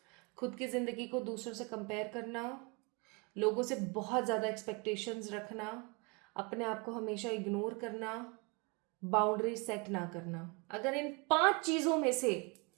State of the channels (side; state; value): left; quieter; 30.5 dB